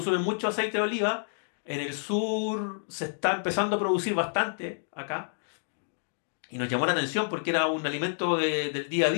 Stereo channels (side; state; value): right; silent; digital silence